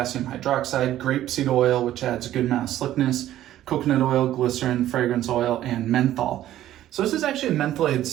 hydroxide, grapeseed oil, which adds a good amount of slickness, coconut oil, glycerin, fragrance oil, and menthol. So this is actually a mentholated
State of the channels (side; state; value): left; quieter; 13.0 dB